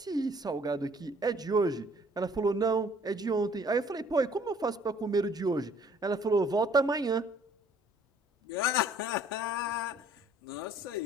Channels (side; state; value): both; normal; correlation 0.57